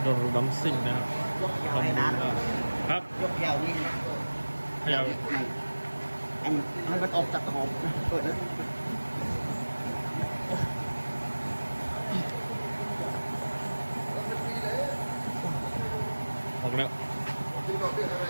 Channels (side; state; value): both; inverted; correlation -1.00